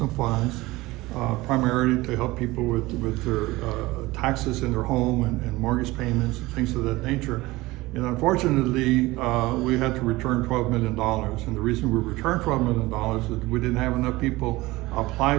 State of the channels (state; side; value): quieter; left; 20.0 dB